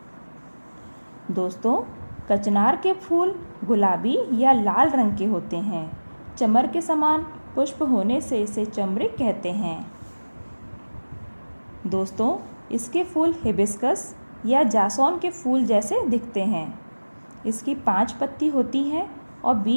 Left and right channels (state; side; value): inverted; both; correlation -1.00